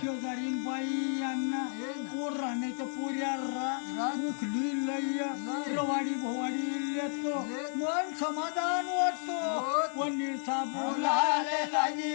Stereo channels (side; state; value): right; silent; 56 dB below the other